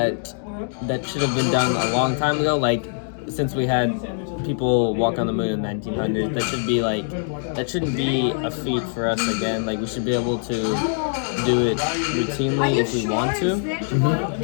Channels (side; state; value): right; silent; digital silence